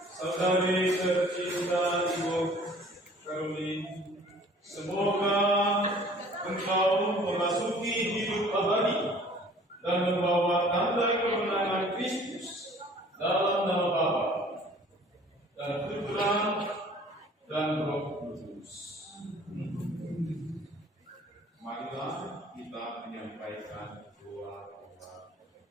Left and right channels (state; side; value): normal; both; correlation 0.52